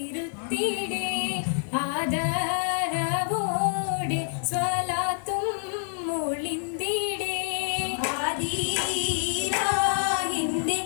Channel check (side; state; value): right; silent; 60 dB below the other